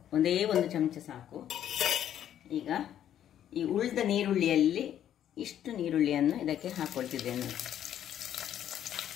ಒಂದೇ ಒಂದು ಚಮಚ ಸಾಕು. ಈಗ ಈ ಉಳಿದ ನೀರುಳ್ಳಿಯಲ್ಲಿ ಇಷ್ಟು ನೀರುಳ್ಳಿಯನ್ನು ಇದಕ್ಕೆ ಹಾಕ್ಕೊಳ್ತಿದ್ದೇನೆ.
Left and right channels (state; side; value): quieter; right; 10.6 dB